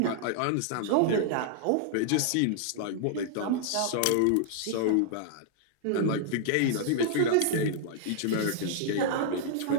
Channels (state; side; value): different; both; correlation -0.01